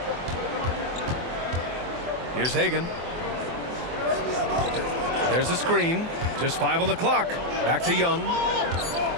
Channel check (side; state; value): left; late; 24 ms